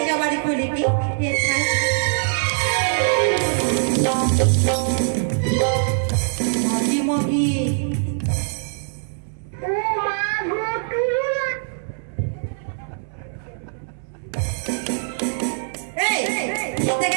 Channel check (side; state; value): left; silent; 64 dB below the other